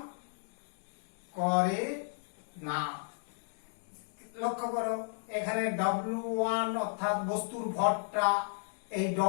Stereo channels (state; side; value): silent; right; digital silence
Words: লক্ষ্য করো এখানে W1 অর্থাৎ বস্তুর ভরটা এই